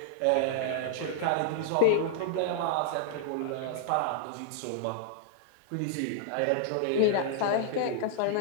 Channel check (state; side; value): different; both; correlation -0.02